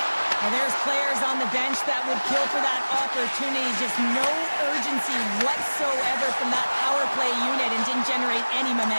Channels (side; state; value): both; inverted; correlation -1.00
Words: And there's players on the bench that would kill for that opportunity. Just no urgency whatsoever from that power play unit and didn't generate any